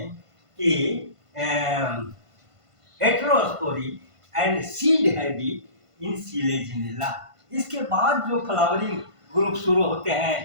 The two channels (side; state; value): left; late; 1.5 ms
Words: कि heterospory and seed habit in Selaginella. इसके बाद जो फ्लावरिंग ग्रुप शुरू होते